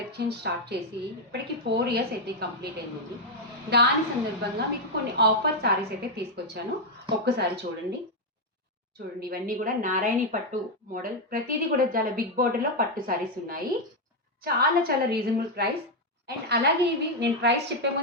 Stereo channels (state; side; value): normal; both; correlation 0.01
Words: start చేసి ఇప్పటికి 4 ఇయర్స్ అయితే కంప్లీట్ అయింది. దాని సందర్భంగా మీకు కొన్ని ఆఫర్ సారీస్ అయితే తీసుకొచ్చాను. ఒక్కసారి చూడండి. ఇవన్నీ కూడా నారాయణి పట్టు మోడల్, ప్రతిదీ కూడా చాలా బిగ్ బోర్డర్లో పట్టు సారీస్ ఉన్నాయి. చాలా చాలా రీజనబుల్ ప్రైస్. అండ్ అలాగే ఇవి నేను ప్రైస్ చెప్పే